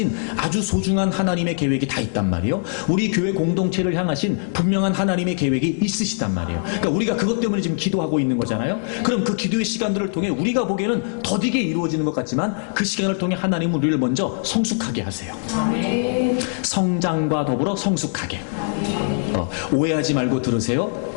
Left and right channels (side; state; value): right; silent; 64 dB below the other